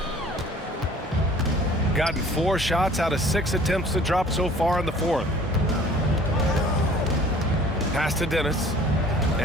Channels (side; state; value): both; normal; correlation 0.51